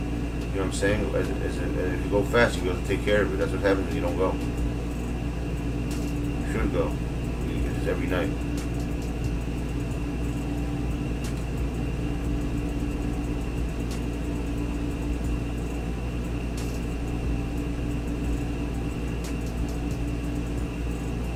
know what I'm saying? If you go fast, you have to take care of it. That's what happens when you don't go. You should go. It's every night.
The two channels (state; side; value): identical; both; correlation 1.00